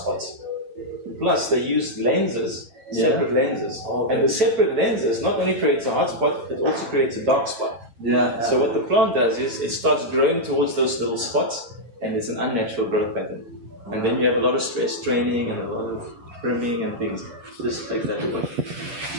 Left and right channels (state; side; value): late; left; 8.5 ms